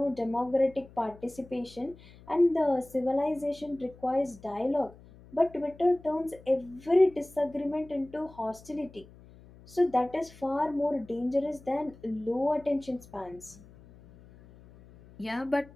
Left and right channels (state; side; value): noise; left; hum, 22 dB below the sound